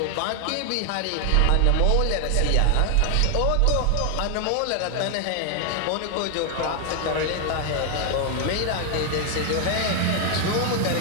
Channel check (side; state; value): both; different; correlation 0.00